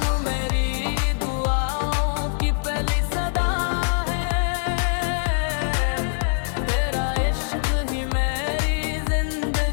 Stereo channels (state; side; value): silent; right; digital silence